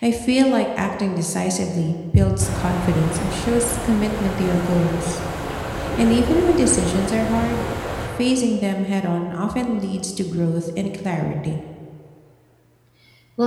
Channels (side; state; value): both; identical; correlation 1.00